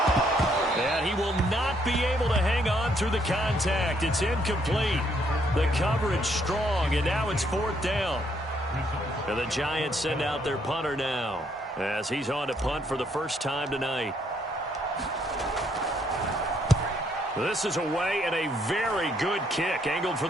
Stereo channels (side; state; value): both; normal; correlation 0.70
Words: And he will not be able to hang on through the contact. It's incomplete. The coverage strong, and now it's 4th down. And the Giants send out their punter now, as he's on to punt for the first time tonight. This is away, and a very good kick angled for